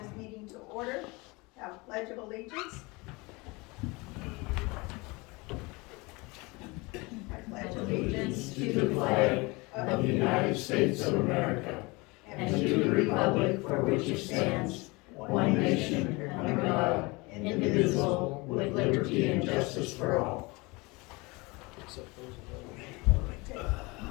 meeting to order. Have a pledge of allegiance. I pledge allegiance to the flag of the United States of America and to the republic for which it stands, one nation, under God, indivisible, with liberty and justice for all.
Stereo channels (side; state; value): right; quieter; 25.4 dB